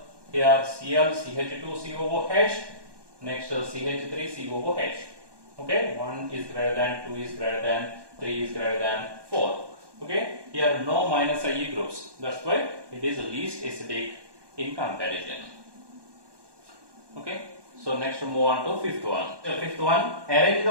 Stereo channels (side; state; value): left; late; 1.2 ms